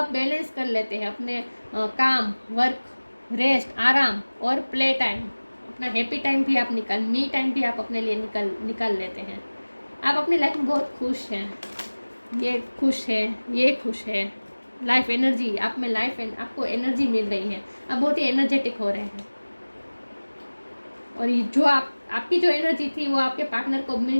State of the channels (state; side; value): inverted; both; correlation -1.00